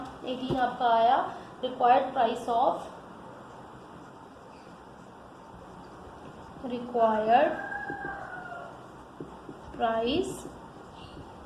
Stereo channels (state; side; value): identical; both; correlation 1.00